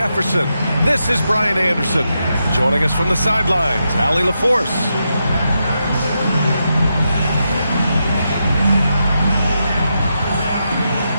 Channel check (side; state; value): both; inverted; correlation -0.85